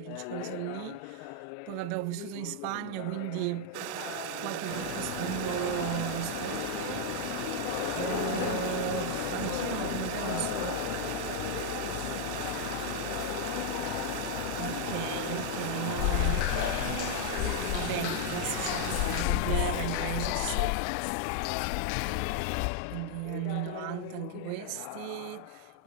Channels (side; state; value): both; different; correlation 0.00